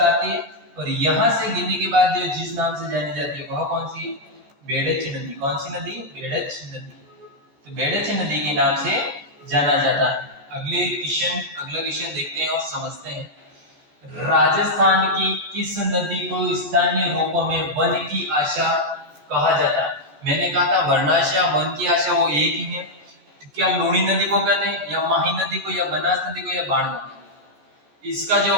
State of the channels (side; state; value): left; late; 14 ms